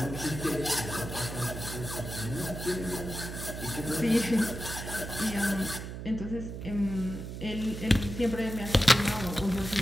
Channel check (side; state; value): right; noise; hum, 8 dB below the sound